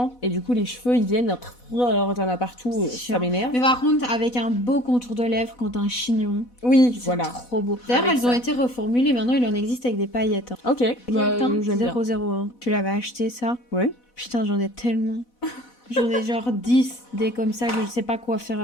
Et du coup, les cheveux, ils viennent. Alors, t'en as partout. C'est Ça chiant. m'énerve. Mais par contre, avec un beau contour de lèvres, quand t'as un chignon, Oui, c'est voilà. trop beau. D'ailleurs, Avec elles ont ça. été reformulées. Maintenant, il en existe avec des paillettes. Hein. Ok. Bah, Putain, j'aime bien. 001. Tu l'avais acheté ça? Ouais. Putain, j'en ai tellement. J'en ai genre 10 des comme ça que je sais pas quoi faire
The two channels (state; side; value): late; right; 4.1 ms